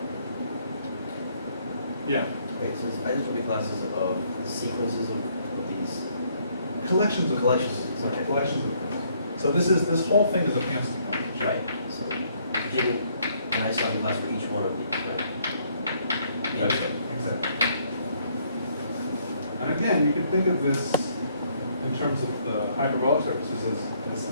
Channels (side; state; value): both; inverted; correlation -0.67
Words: Yeah. Okay, so it's isotopic classes of the sequences of these Collections of collections. Sorry, Okay. collections of. So this whole thing is a Panstick combination. Right, so taking an isotopic class for each one of these, right? That's right, exactly. And again, you can think of this in terms of the hyperbolic surfaces as